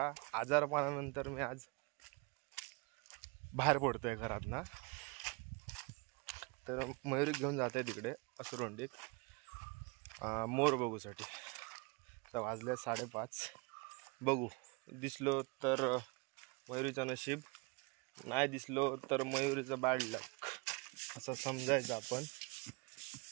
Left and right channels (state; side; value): quieter; left; 29.7 dB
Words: आजारपणानंतर मी आज बाहेर पडतोय घरात ना. तर मयुरी घेऊन जाते तिकडे असुरवंडीक मोर बघूसाठी. तर वाजले 5:30. बघू दिसलो तर मयुरीचं नशीब, नाही दिसलो तर मयुरीचं बॅड लक असं समजायचं आपण.